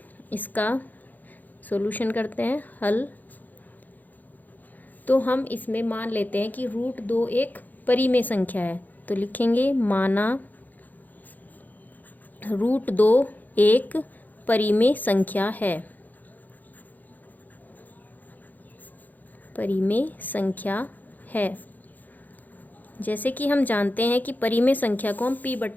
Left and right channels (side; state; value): right; late; 0.083 ms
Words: इसका सॉल्यूशन करते हैं, हल। तो हम इसमें मान लेते हैं कि √2 एक परिमेय संख्या है। तो लिखेंगे, माना √2 एक परिमेय संख्या है। परिमेय संख्या है। जैसे कि हम जानते हैं कि परिमेय संख्या को हम